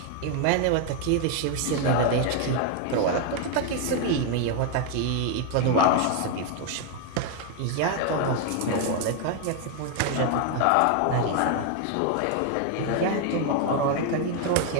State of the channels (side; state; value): both; different; correlation 0.01